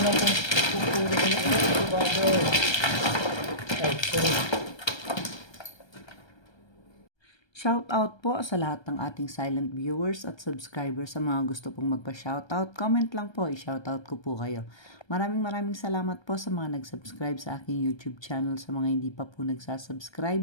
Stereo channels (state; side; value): late; right; 1.3 ms